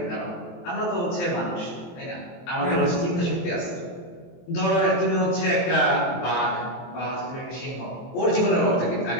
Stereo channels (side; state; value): right; late; 23 ms